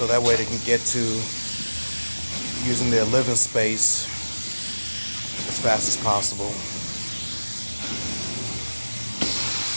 that way they can get to using their living space as fast as possible.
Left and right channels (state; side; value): inverted; both; correlation -1.00